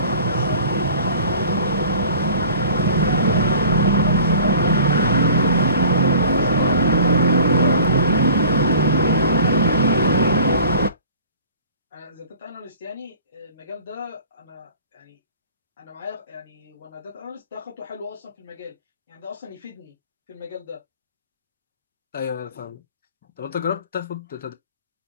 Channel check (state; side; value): inverted; both; correlation -0.47